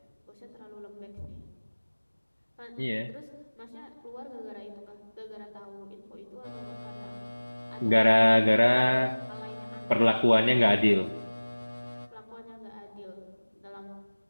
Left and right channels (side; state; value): both; inverted; correlation -1.00